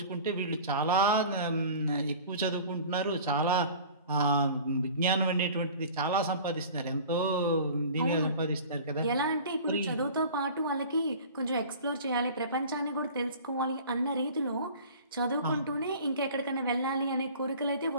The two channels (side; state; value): both; inverted; correlation -0.42